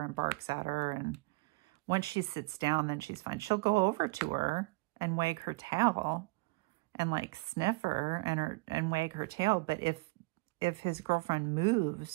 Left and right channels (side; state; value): left; quieter; 25.4 dB